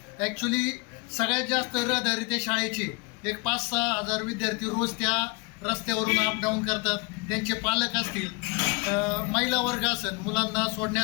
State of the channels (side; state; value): right; quieter; 28.6 dB